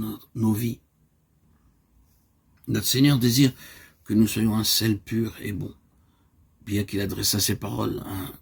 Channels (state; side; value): identical; both; correlation 1.00